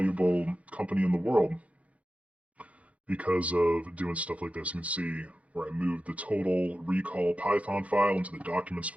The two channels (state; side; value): late; left; 0.065 ms